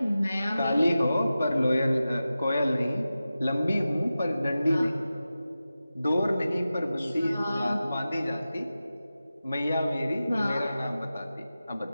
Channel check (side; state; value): both; inverted; correlation -0.94